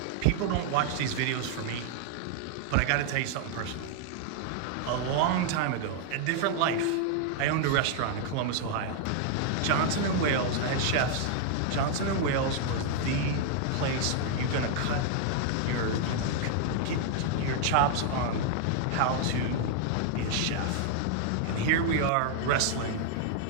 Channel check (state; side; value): different; both; correlation 0.00